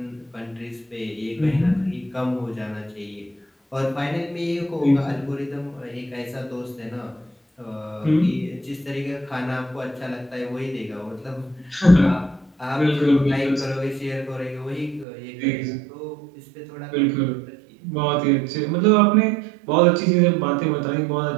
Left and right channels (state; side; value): drops out; left; at 15.1 s